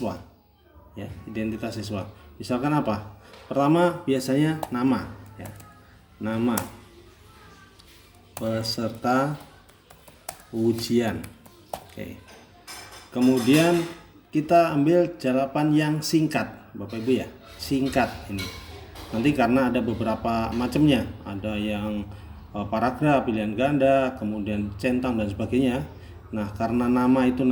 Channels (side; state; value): both; identical; correlation 1.00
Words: ya, identitas siswa. Misalkan apa? Pertama biasanya nama ya, nama peserta ujian. Oke. Kemudian kita ambil jawaban yang singkat Bapak Ibu ya, singkat ini. Nanti karena ada beberapa macamnya, ada yang paragraf, pilihan ganda, kemudian centang dan sebagainya. Nah, karena nama itu